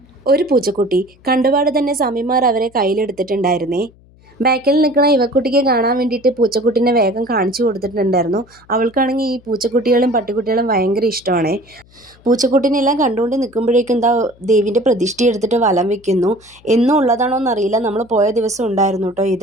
ഒരു പൂച്ചക്കുട്ടി. കണ്ടുപാട് തന്നെ സ്വാമിമാർ അവരെ കയ്യിലെടുത്തിട്ടുണ്ടായിരുന്നേ. ബാക്കിൽ നിൽക്കുന്ന ഇവക്കുട്ടിക്ക് കാണാൻ വേണ്ടിയിട്ട് പൂച്ചക്കുട്ടീനെ വേഗം കാണിച്ചു കൊടുത്തിട്ടുണ്ടായിരുന്നു. അവൾക്കാണെങ്കിൽ ഈ പൂച്ചക്കുട്ടികളും പട്ടിക്കുട്ടികളും ഭയങ്കര ഇഷ്ടമാണ്. പൂച്ചക്കുട്ടീനെല്ലാം കണ്ടുകൊണ്ട് നിൽക്കുമ്പോഴേക്കും ദേവിൻ്റെ പ്രതിഷ്ഠ എടുത്തിട്ട് വലം വെക്കുന്നു. എന്നും ഉള്ളതാണോ എന്നറിയില്ല. നമ്മൾ പോയ ദിവസം ഉണ്ടായിരുന്നു കേട്ടോ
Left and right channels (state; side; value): noise; left; hum, 28 dB below the sound